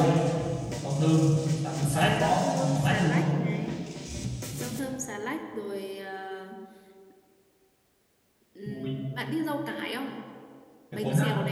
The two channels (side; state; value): both; identical; correlation 1.00